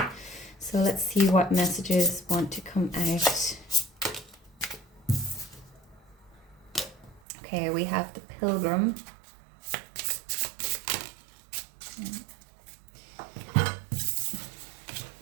So let's see what messages want to come out. Okay, we have the Pilgrim.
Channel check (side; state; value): left; drops out; at 7.2 s